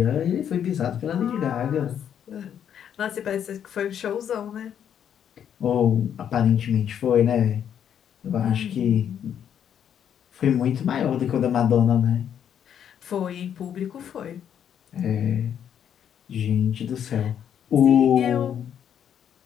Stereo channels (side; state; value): right; quieter; 9.0 dB